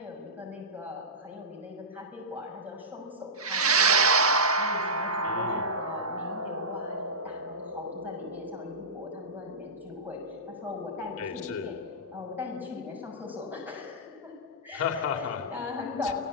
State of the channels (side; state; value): both; normal; correlation -0.14